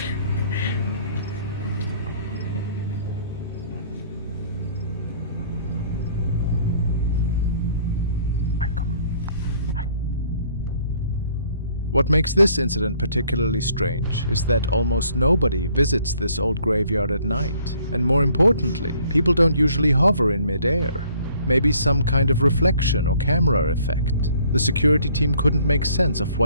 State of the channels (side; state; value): both; inverted; correlation -0.60